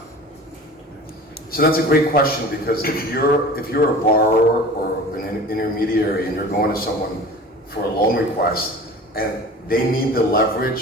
so that's a great question, because if you're a borrower or an intermediary and you're going to someone for a loan request and they need the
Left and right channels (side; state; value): both; normal; correlation 0.39